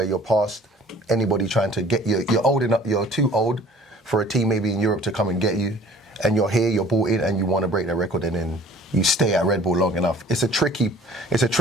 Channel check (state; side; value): normal; both; correlation 0.51